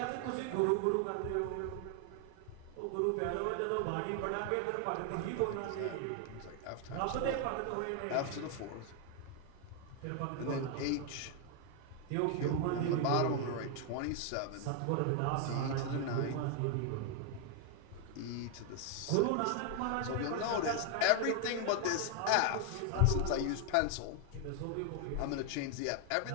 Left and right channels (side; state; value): both; different; correlation 0.00